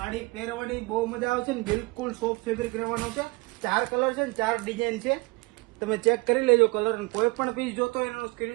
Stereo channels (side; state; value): left; quieter; 23.8 dB